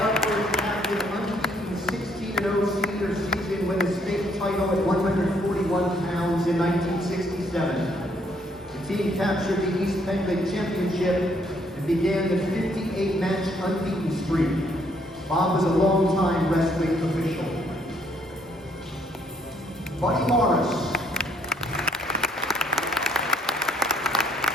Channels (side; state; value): both; normal; correlation 0.68